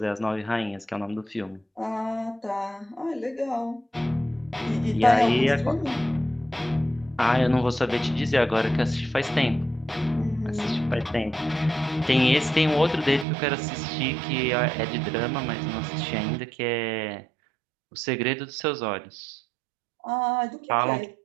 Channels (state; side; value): drops out; left; at 13.2 s